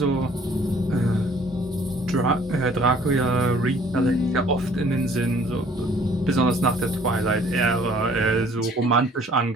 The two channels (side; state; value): both; normal; correlation 0.57